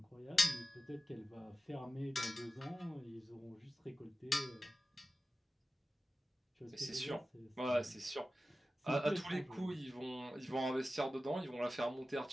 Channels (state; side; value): normal; both; correlation 0.94